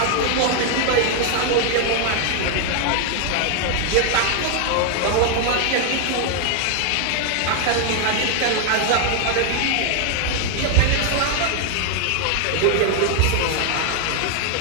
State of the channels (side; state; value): both; different; correlation 0.00